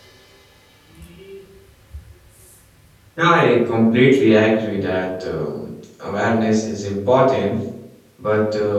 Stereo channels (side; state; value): both; identical; correlation 1.00